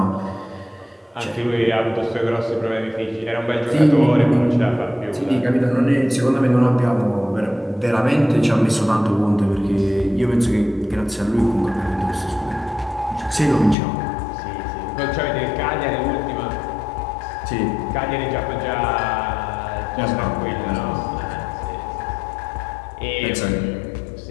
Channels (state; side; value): drops out; right; at 13.8 s